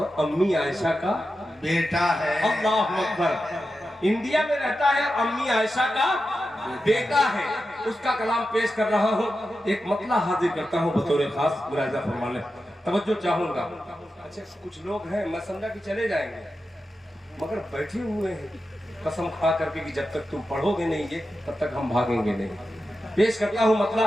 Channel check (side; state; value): both; normal; correlation 0.91